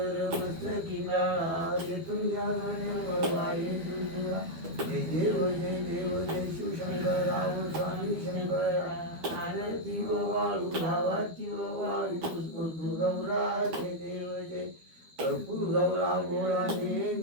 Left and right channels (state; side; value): late; left; 12 ms